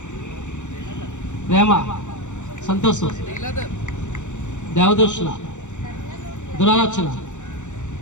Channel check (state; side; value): late; right; 0.85 ms